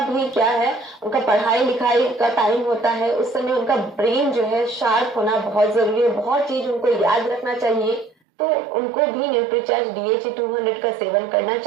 भी क्या है, उनका पढ़ाई लिखाई का टाइम होता है, उस समय उनका ब्रेन जो है शार्प होना बहुत जरूरी है, बहुत चीज उनको याद रखना चाहिए, तो उनको भी न्यूट्रीचार्ज DHA 200 का सेवन करना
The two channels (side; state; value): left; drops out; at 8.2 s